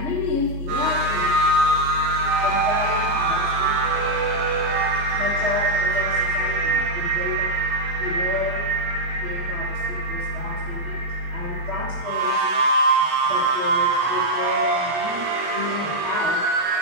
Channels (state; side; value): late; left; 3.5 ms